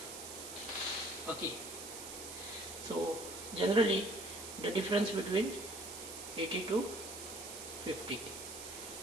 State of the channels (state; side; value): noise; right; hiss, 9 dB below the sound